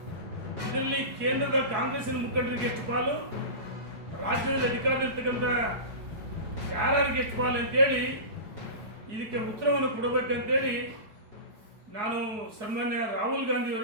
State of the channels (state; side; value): late; left; 4.7 ms